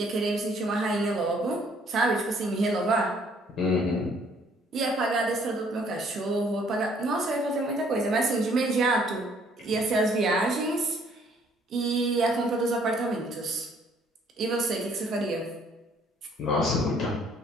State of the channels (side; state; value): both; normal; correlation 0.62